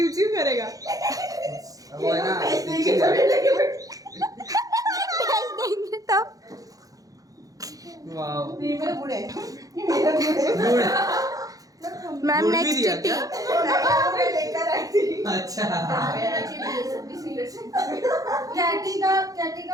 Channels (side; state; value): left; late; 0.17 ms